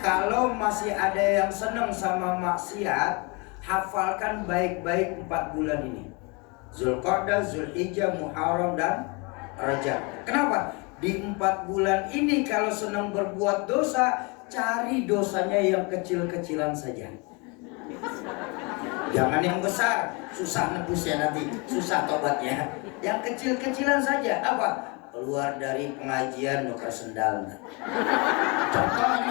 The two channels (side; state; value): right; quieter; 30.0 dB